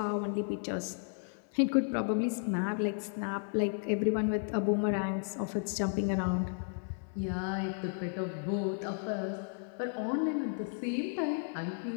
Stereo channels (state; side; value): silent; right; 55 dB below the other